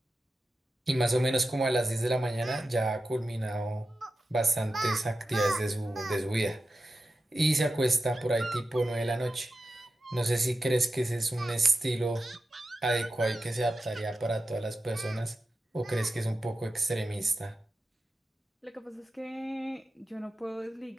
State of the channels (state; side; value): normal; both; correlation 0.92